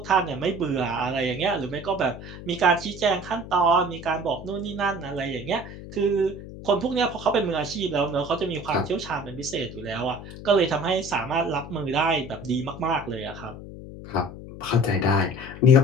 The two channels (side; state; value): left; noise; hum, 13 dB below the sound